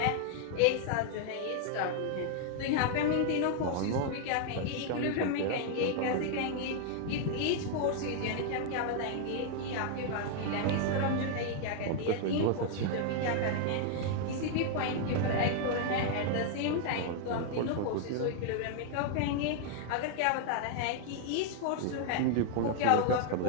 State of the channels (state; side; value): different; both; correlation 0.00